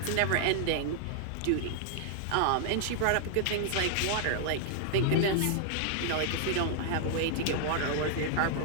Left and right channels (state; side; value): different; both; correlation -0.01